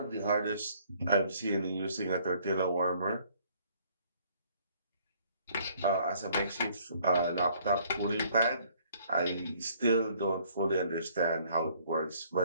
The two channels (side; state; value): both; inverted; correlation -0.61